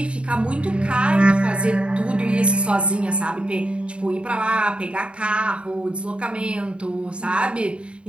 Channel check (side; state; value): left; late; 0.058 ms